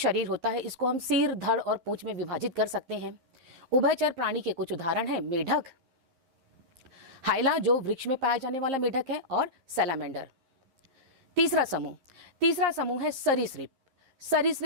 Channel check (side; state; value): left; late; 11 ms